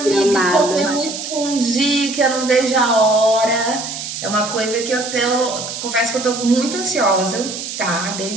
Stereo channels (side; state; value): right; noise; hiss, 7 dB below the sound